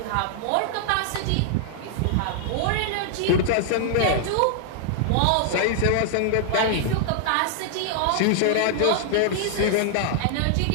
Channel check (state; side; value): different; both; correlation -0.01